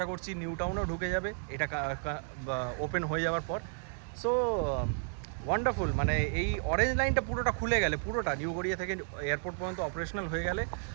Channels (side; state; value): left; silent; 56 dB below the other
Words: করছি নিউ টাউনেও ঢুকে যাবে, এটা ওপেন হয়ে যাওয়ার পর। সো ওয়ান্ডারফুল, মানে এই অরেঞ্জ লাইনটা পুরোটা খুলে গেলে, পুরোটা নিউ গড়িয়া থেকে এয়ারপোর্ট পর্যন্ত অপারেশনাল হয়ে গেলে